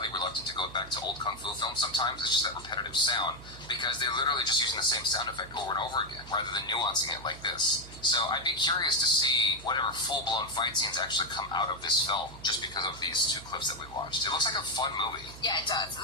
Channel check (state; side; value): noise; right; hum, 16 dB below the sound